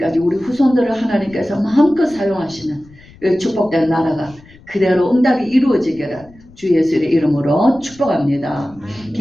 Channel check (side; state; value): left; noise; rumble, 24 dB below the sound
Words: 우리 후손들을 하나님께서 마음껏 사용하시는 이 축복된 나라가 그대로 응답이 이루어지기를 주 예수의 이름으로 축복합니다.